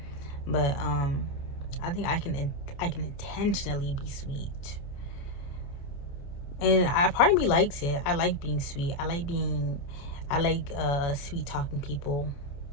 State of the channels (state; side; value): late; right; 28 ms